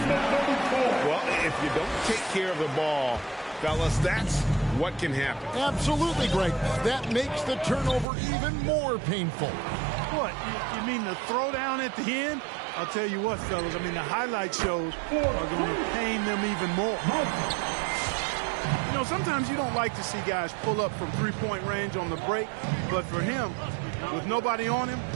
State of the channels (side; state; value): left; drops out; at 8.1 s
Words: Well, if you don't take care of the ball, fellas, that's what can happen. Absolutely, Greg. That makes the turnover even more painful. What? You mean the throwdown at the end? I'll tell you what, fellas. I mean, the highlight shows are going to pain them even more. You know, sometimes you don't like to see guys pull up from three-point range on the break, but for him, with nobody on him,